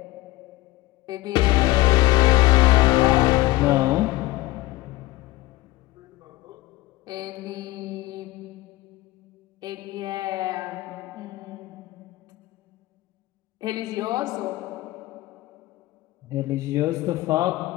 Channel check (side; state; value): right; quieter; 18.8 dB